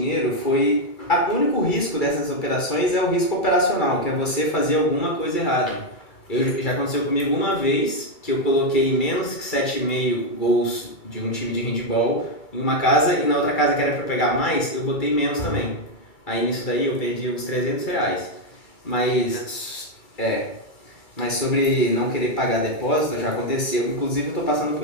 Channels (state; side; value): late; right; 2.3 ms